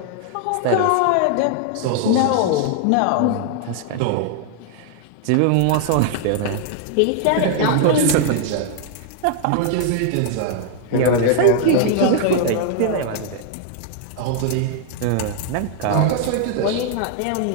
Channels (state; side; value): different; both; correlation 0.00